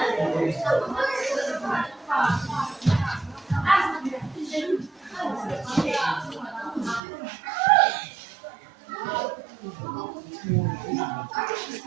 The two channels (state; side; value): drops out; left; at 7.0 s